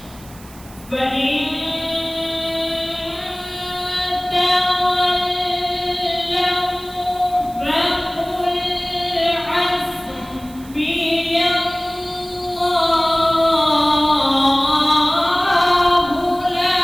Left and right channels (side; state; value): right; noise; hiss, 22 dB below the sound